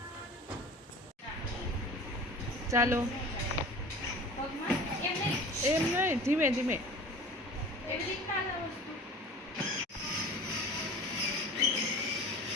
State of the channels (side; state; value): both; normal; correlation 0.41